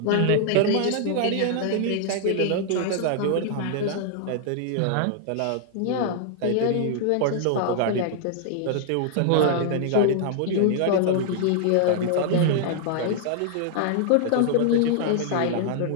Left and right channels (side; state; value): both; different; correlation -0.01